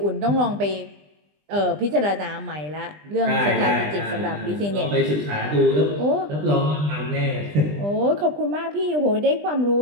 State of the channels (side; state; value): left; late; 20 ms